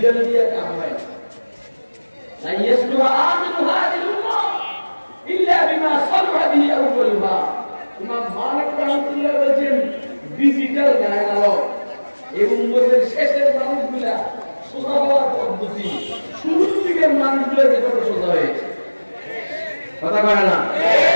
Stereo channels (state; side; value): inverted; both; correlation -1.00